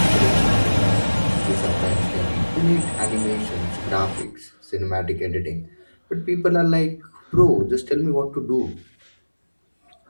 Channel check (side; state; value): both; inverted; correlation -1.00